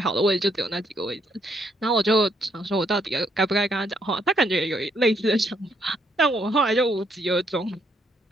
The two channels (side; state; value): both; normal; correlation 0.73